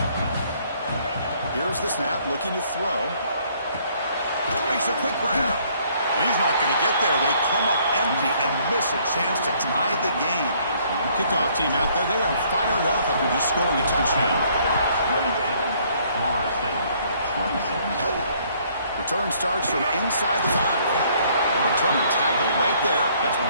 Here's the snap, looking to throw. Makes a quick grab. He's not going to get there. They come up empty and miss a chance to tie the game. Kickoff team out there, they are fired up after just scoring a touchdown. Return starts from inside the 5. Returner tackled right there. That's when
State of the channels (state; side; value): inverted; both; correlation -0.64